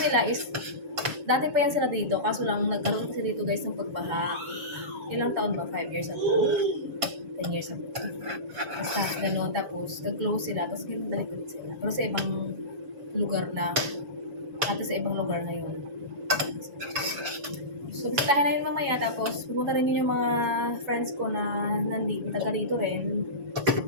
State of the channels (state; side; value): late; left; 7.1 ms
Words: is, dati pa yan sila dito, kaso lang nagkaroon kasi dito guys ng pagbaha. Ilang taon ba? 5 years ago? 10 years ago. Basta, gano'n. Tapos, nag-close sila, tapos ganun balik ulit sila. Pero sa ibang lugar na, sa ibang lugar na yun. So, bisitahin na yun mamaya. Tapos, pupunta rin yun yung mga friends ko na taga dito rin.